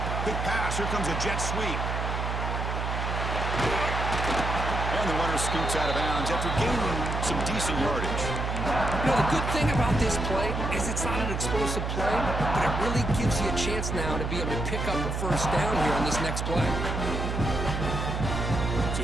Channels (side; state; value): right; noise; hum, 2 dB below the sound